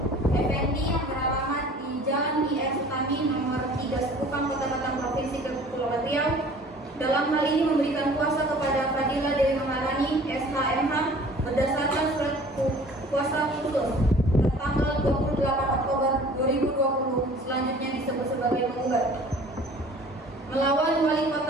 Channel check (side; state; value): both; normal; correlation 0.48